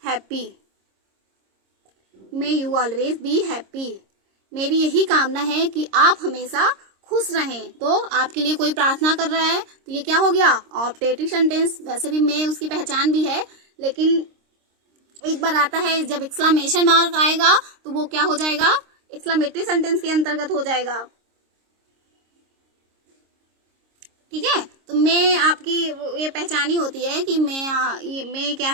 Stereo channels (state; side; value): late; left; 26 ms